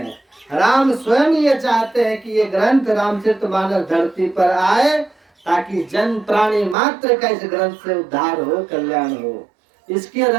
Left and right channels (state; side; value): drops out; left; at 6.8 s